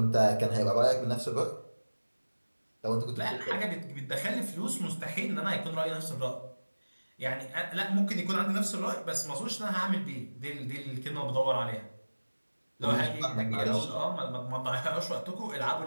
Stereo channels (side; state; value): both; inverted; correlation -1.00